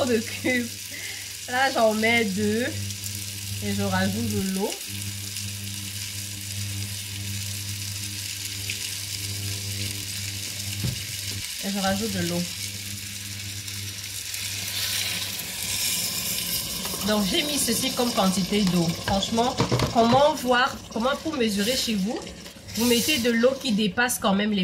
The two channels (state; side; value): identical; both; correlation 1.00